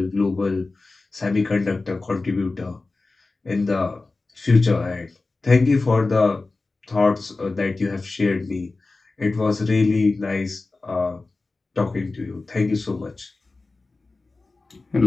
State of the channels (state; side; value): quieter; right; 3.5 dB